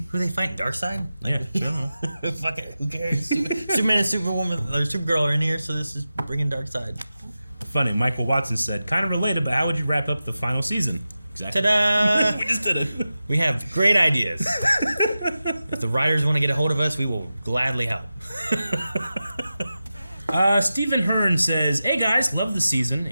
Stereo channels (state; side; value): inverted; both; correlation -0.93